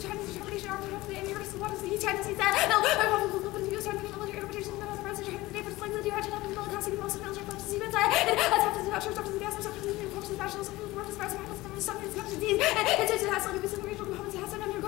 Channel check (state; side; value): quieter; right; 19.2 dB